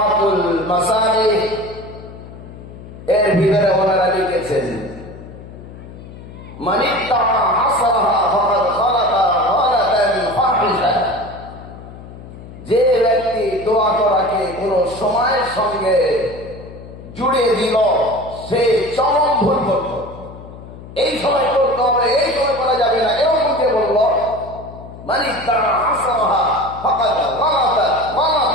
মাসালিহ। এর ভিতরে ওনারা লিখেছেন, মান ইত্তাআ আসরাহা ফাকাদ খালাতা গালাতান ফাহিশা, যে ব্যক্তি দোয়া করাকে কোন সময়ের সঙ্গে জুড়ে দিল সে চরম ভুল করল। এই সময় করতে হবে, এই সময় করা যাবে না, এরকম কে বলল? মান ইত্তাআ আসরাহা ফাকাদ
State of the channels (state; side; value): noise; left; hum, 16 dB below the sound